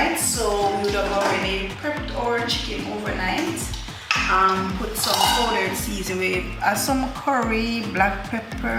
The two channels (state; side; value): identical; both; correlation 1.00